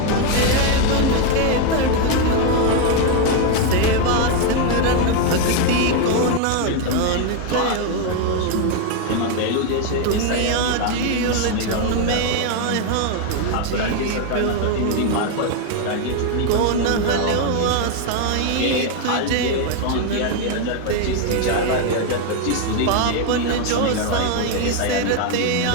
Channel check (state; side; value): different; both; correlation 0.01